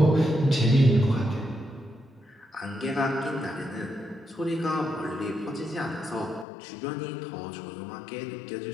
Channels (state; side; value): drops out; right; at 6.5 s